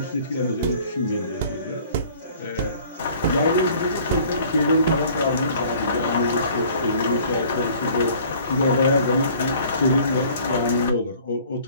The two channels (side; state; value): both; inverted; correlation -0.52